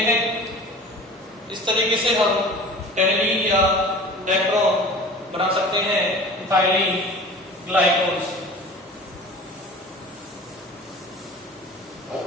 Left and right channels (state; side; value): normal; both; correlation 0.40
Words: हैं। इस तरीके से हम टेरिडीन या डेक्टरॉन बना सकते हैं इथाइलीन ग्लाइकोल से।